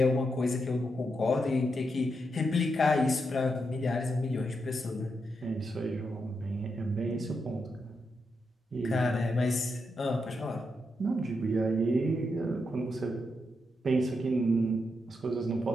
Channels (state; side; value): normal; both; correlation 0.84